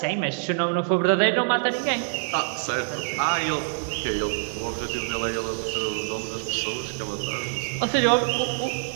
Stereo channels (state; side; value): silent; left; digital silence